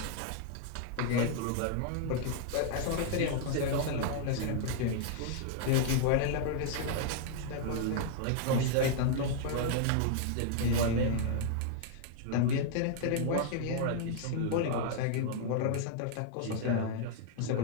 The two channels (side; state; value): both; different; correlation -0.01